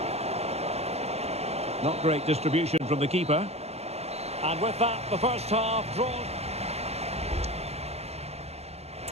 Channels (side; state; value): left; late; 0.30 ms